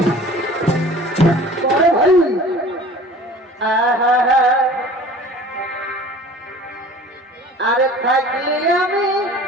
ভাই আরে থাকলে আমি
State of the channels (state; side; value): normal; both; correlation 0.45